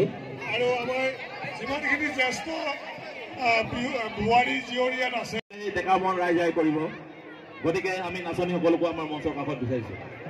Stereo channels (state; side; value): identical; both; correlation 1.00